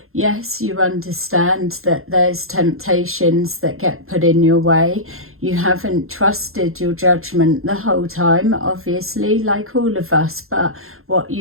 yes, you understand that there's temptations that get put in your way. You haven't trusted your judgment the whole time, obviously, like all of us, but what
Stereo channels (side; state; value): left; late; 0.61 ms